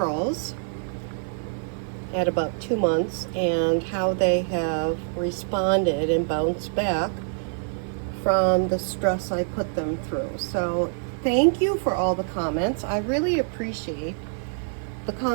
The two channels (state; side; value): silent; left; 57 dB below the other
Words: at about 2 months and how they have responded and bounced back from the stress I put them through. So thank you for all the comments. I really appreciate the